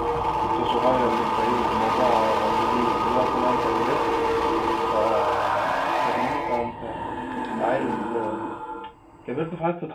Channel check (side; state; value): both; identical; correlation 1.00